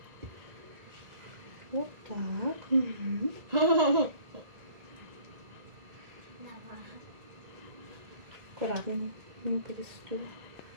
Вот так. Угу. Аккуратно. Не перестуй.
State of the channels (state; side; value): late; left; 1.9 ms